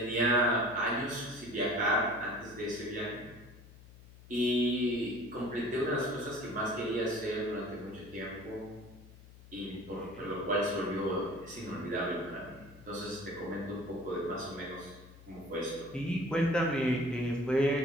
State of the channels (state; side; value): noise; left; hum, 20 dB below the sound